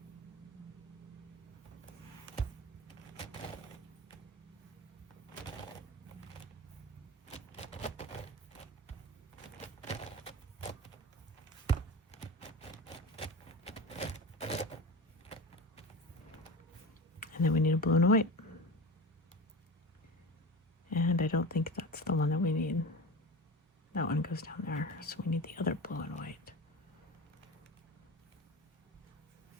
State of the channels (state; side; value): normal; both; correlation 0.29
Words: And then we need a blue and a white. And I don't think that's the one that we need. That one goes down there. So we need the other blue and white.